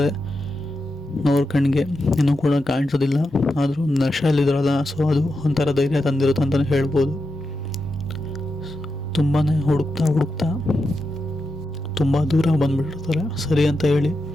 ಅವ್ರ ಕಣ್ಣಿಗೆ ಇನ್ನೂ ಕೂಡ ಕಾಣಿಸೋದಿಲ್ಲ, ಆದರೂ ನಶೆಯಲ್ಲಿದ್ರಲ್ಲ, ಸೊ ಅದು ಒಂಥರ ಧೈರ್ಯ ತಂದಿರುತ್ತೆ ಅಂತಲೇ ಹೇಳ್ಬೋದು. ತುಂಬಾ ಹುಡುಕ್ತಾ ತುಂಬ ದೂರ ಬಂದುಬಿಟ್ಟಿರ್ತಾರೆ. ಸರಿ ಅಂತ ಹೇಳಿ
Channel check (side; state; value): both; normal; correlation 0.87